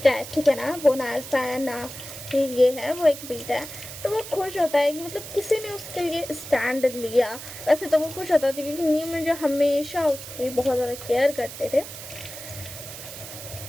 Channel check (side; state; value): right; noise; hiss, 12 dB below the sound